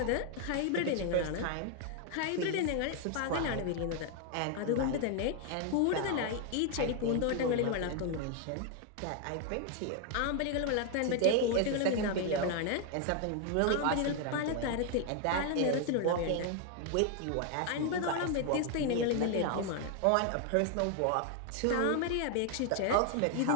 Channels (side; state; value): both; different; correlation 0.00